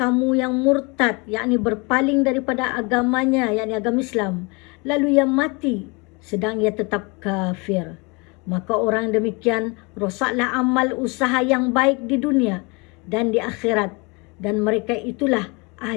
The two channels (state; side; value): quieter; right; 29.0 dB